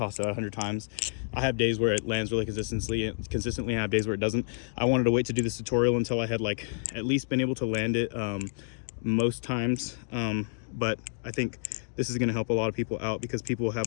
it out 100 times. I have days where it lands really consistently, I have days where it doesn't. I wanted to wait to do this tutorial until I had like at least been able to land it most times. But I think this is going to help a lot of people out, because people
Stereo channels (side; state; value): right; silent; digital silence